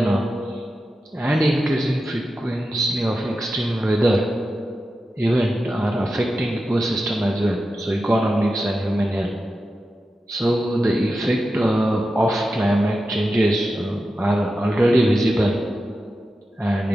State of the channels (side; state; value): both; normal; correlation 0.91